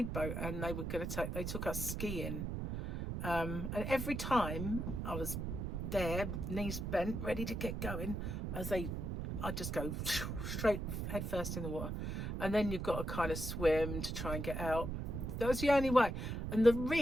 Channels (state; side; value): noise; right; rumble, 3 dB below the sound